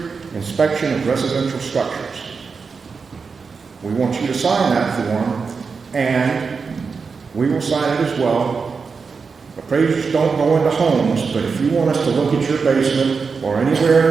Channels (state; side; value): quieter; left; 5.1 dB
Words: Inspection of Residential Structures. We want you to sign that form, and we will sign it as well. Appraisers don't go into homes, but if you want us to look at your basement or anywhere in